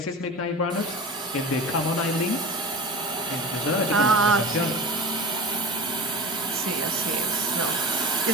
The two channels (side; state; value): both; normal; correlation 0.31